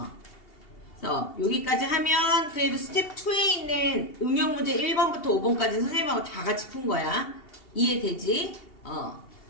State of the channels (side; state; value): right; late; 2.8 ms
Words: 그래서 여기까지 하면 그래도 스텝 2에 있는 응용 문제 1번부터 5번까지 선생님하고 다 같이 푼 거야. 이해되지?